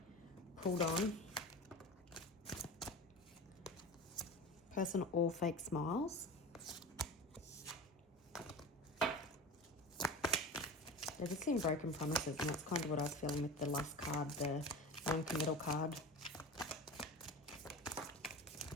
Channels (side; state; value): both; normal; correlation 0.32